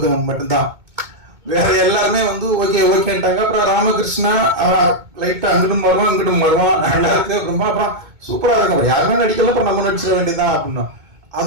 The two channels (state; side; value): late; left; 2.2 ms